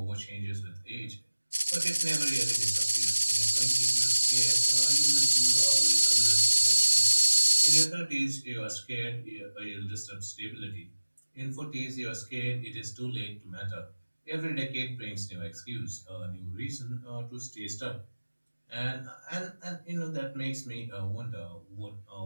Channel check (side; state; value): both; inverted; correlation -1.00